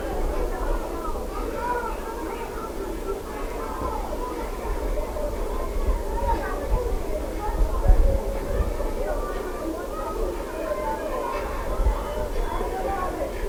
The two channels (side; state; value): both; identical; correlation 1.00